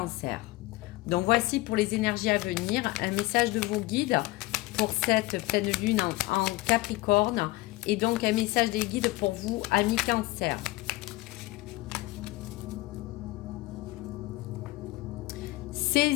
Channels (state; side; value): quieter; right; 20.2 dB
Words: Donc voici pour les énergies à venir, un message de vos guides pour cette pleine lune en Capricorne et donc un message des guides pour vous, amis Cancer.